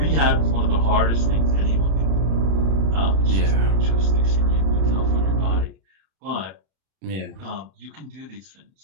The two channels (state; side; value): late; left; 31 ms